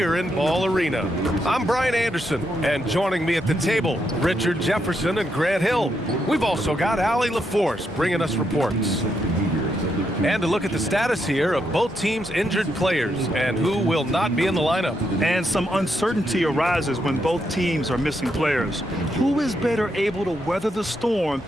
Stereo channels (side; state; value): both; normal; correlation 0.80